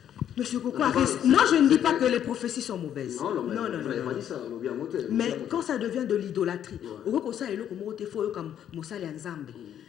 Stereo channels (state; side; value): quieter; right; 10.0 dB